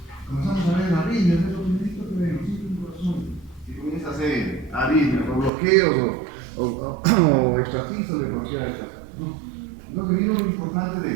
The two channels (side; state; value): left; drops out; at 5.5 s